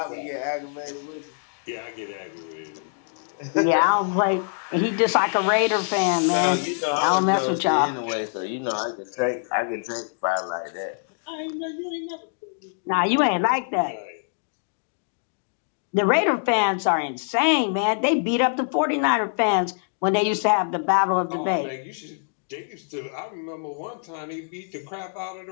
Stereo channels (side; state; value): right; silent; digital silence